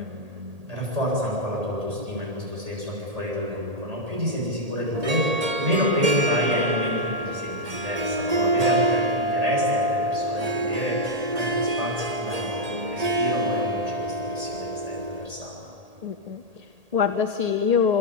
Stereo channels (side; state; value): left; late; 1.8 ms